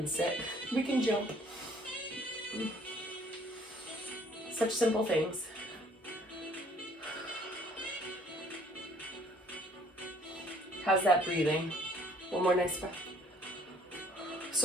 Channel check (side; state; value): both; normal; correlation 0.59